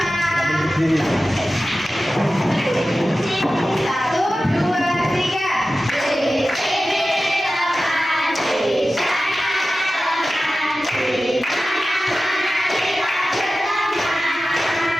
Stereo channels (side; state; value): both; normal; correlation 0.94